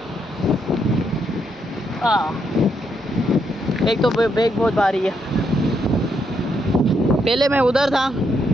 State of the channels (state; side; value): normal; both; correlation 0.77